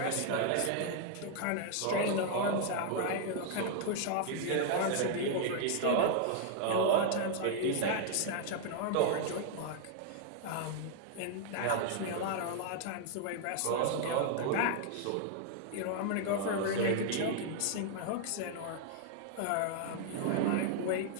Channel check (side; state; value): both; different; correlation 0.00